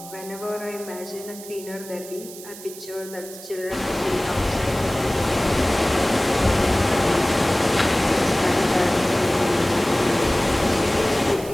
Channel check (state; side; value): noise; right; hiss, 15 dB below the sound